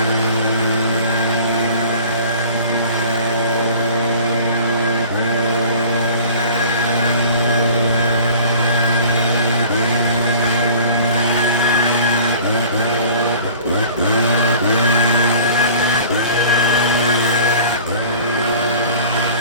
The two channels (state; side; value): inverted; both; correlation -0.45